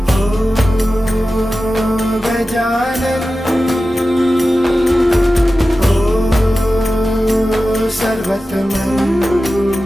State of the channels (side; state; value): both; normal; correlation 0.94